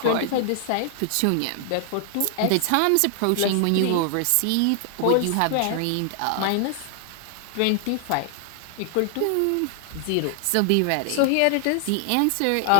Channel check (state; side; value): different; both; correlation 0.00